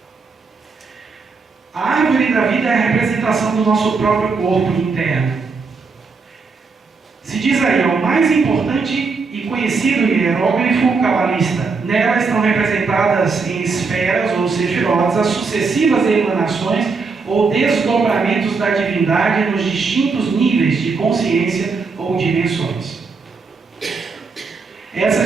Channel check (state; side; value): quieter; left; 4.6 dB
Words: A árvore da vida é a representação do nosso próprio corpo interno. Se diz aí, o mais importante e conhecido hieróglifo cabalista. Nela estão representadas em esferas ou sefirotes as sucessivas emanações ou desdobramentos da divindade nos distintos níveis de consciência ou dimensões.